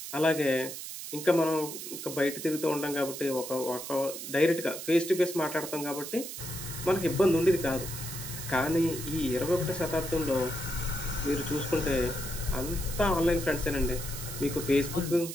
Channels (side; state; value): right; noise; hiss, 8 dB below the sound